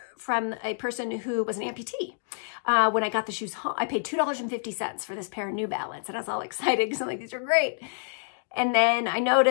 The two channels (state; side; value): silent; right; digital silence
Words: from a person who was an amputee. When I got the shoes home, I paid $2.50 for this pair of New Balance, and I was all excited because I'm like, these are great. And then I